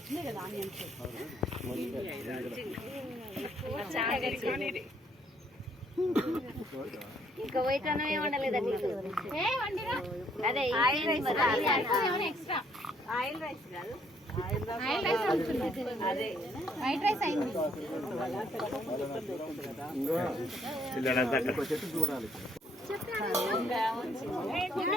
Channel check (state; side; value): normal; both; correlation 0.67